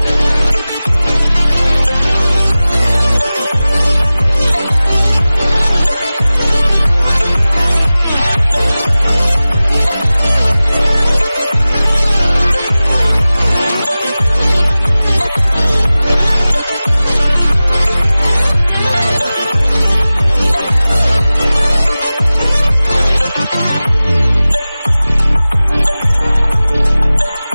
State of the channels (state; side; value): inverted; both; correlation -0.97